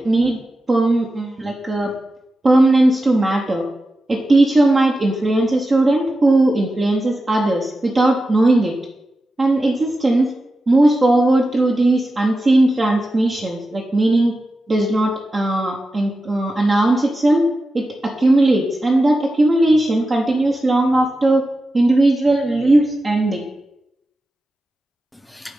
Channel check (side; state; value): both; normal; correlation 0.92